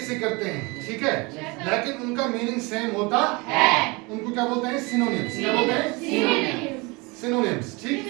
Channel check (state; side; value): quieter; left; 26.6 dB